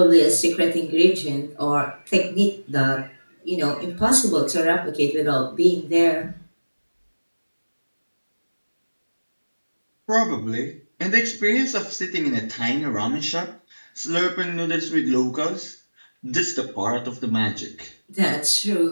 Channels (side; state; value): both; inverted; correlation -1.00